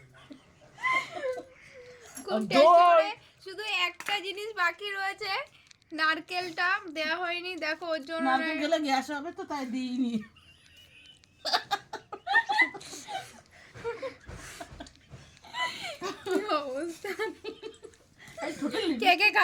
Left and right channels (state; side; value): identical; both; correlation 1.00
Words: খুব টেস্টি করে। শুধু একটা জিনিস বাকি রয়েছে, নারকেলটা দেওয়া হয়নি। দেখো ওর জন্য নারকেল গেলে গ্যাস হবে তো তাই দিইনি। কি অবস্থা। কে কে